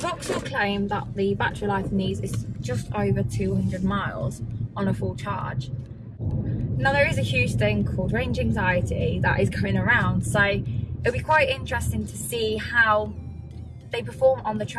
claim that the battery life in these is just over 200 miles on a full charge. Now there is a huge thing called range anxiety that is going around, so it'll be quite interesting to see how they perform on the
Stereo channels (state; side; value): identical; both; correlation 1.00